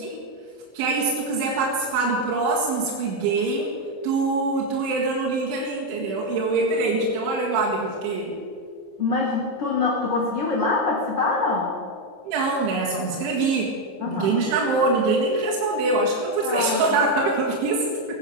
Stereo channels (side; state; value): left; late; 15 ms